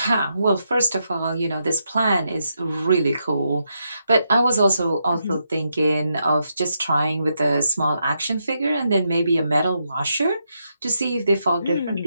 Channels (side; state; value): both; inverted; correlation -0.82